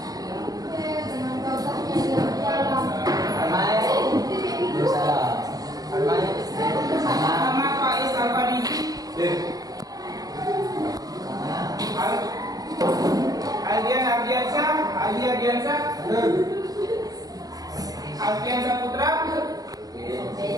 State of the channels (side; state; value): left; late; 0.18 ms